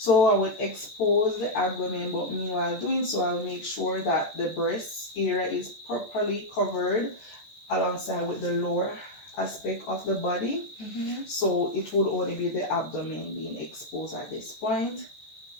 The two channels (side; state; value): right; late; 14 ms